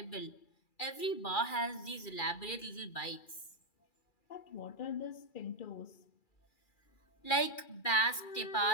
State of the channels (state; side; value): late; right; 2.4 ms